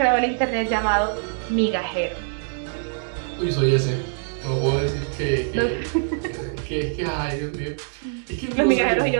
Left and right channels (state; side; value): silent; left; digital silence